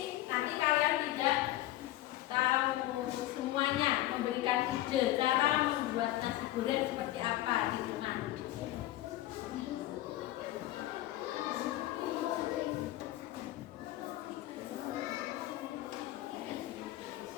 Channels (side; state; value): right; quieter; 15.5 dB